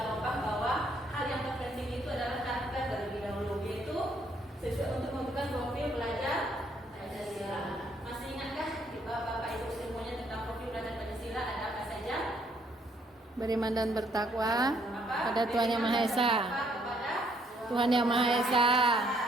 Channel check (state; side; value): normal; both; correlation 0.69